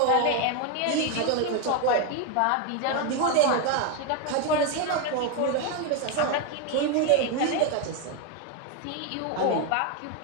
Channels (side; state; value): both; different; correlation 0.02